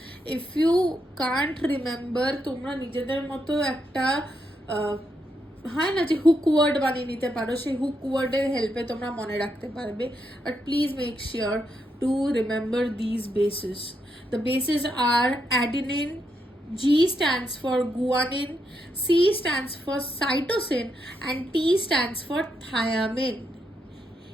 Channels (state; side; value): normal; both; correlation 0.81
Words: If you can't remember, তোমরা নিজেদের মতো একটা হয় না যে হুক ওয়ার্ড বানিয়ে নিতে পারো, সেই হুক ওয়ার্ডের হেল্পে তোমরা মনে রাখতে পারবে। But please make sure to remember this bases. The bases are adenine, G stands for guanine, C stands for cytosine, and T stands for thiamine.